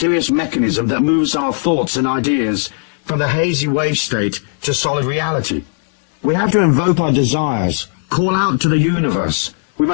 mechanism that moves our thoughts and ideas from the hazy wave state to solid reality. We have to invoke our desires, call out to the universe. We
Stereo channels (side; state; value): right; silent; digital silence